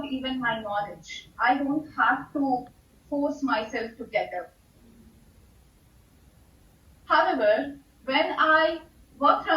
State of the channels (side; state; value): both; identical; correlation 1.00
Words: even my knowledge. I don't have to force myself to get up. However, when I work